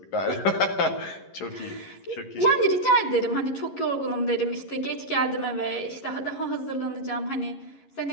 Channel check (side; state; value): right; late; 11 ms